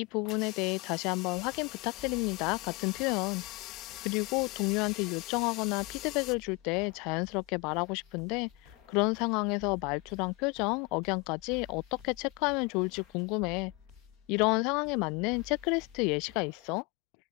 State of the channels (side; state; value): right; quieter; 26.2 dB